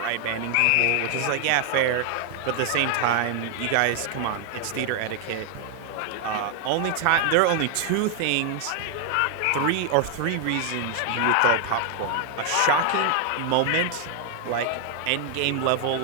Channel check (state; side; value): different; both; correlation 0.00